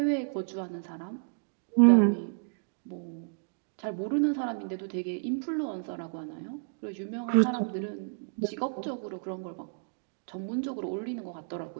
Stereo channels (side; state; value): left; silent; digital silence